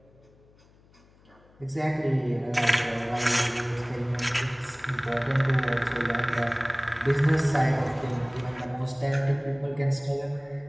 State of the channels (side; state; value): left; noise; hum, 29 dB below the sound